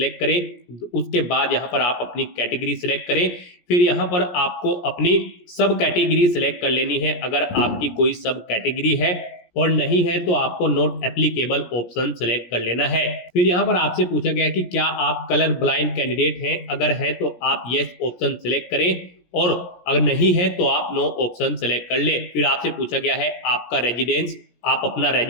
करें। उसके बाद यहाँ पर आप अपनी कैटेगरी सिलेक्ट करें। फिर यहाँ पर आपको अपनी सब कैटेगरी सिलेक्ट कर लेनी है। अगर आपकी कोई सब कैटेगरी है और नहीं है तो आपको नॉट एप्लीकेबल ऑप्शन सिलेक्ट कर लेना है। फिर यहाँ पर आपसे पूछा गया कि क्या आप कलर ब्लाइंड कैंडिडेट हैं, अगर है तो आप यस ऑप्शन सिलेक्ट करें और अगर नहीं है तो आप नो ऑप्शन सिलेक्ट कर ले। फिर आपसे पूछा गया है आपका रेजिडेंस, आप अपना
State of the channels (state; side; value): late; right; 17 ms